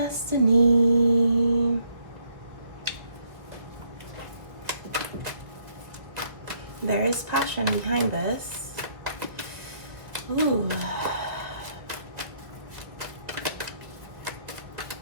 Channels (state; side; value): late; left; 1.7 ms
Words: There is passion behind this. Ooh.